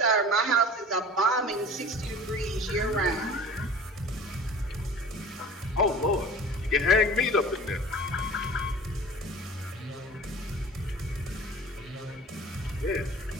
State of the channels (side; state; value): both; normal; correlation 0.41